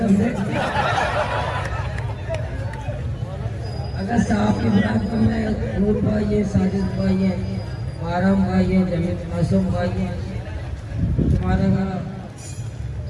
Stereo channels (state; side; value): identical; both; correlation 1.00